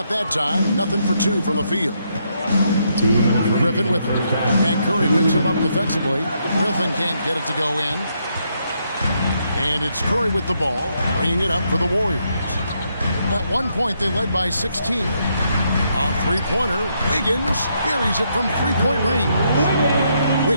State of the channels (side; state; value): both; inverted; correlation -0.76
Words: that time. Nothing for 2 from the field. Griffin with it. And Curry picks him up defensively. Griffin can't get it to go in. And it's Curry with the ball, bringing it up for the Warriors. At one point, they led by 16. A three-pointer, Wiggins buries it from three-point range.